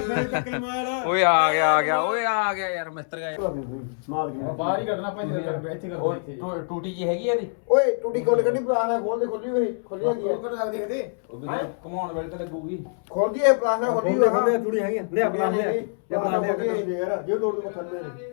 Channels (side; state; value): right; silent; 62 dB below the other